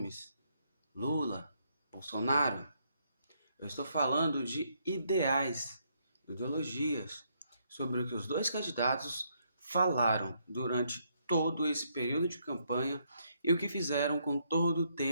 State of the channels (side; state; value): both; inverted; correlation -0.74